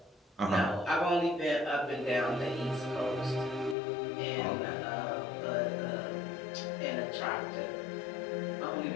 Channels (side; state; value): right; drops out; at 3.8 s